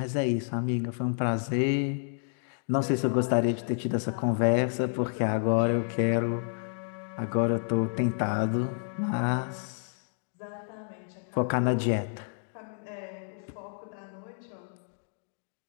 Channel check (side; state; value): right; silent; digital silence